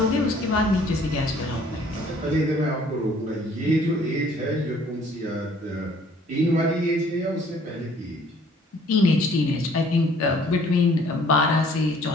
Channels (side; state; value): both; normal; correlation 0.57